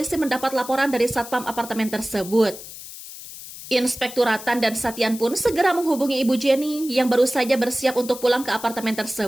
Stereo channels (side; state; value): left; noise; hiss, 13 dB below the sound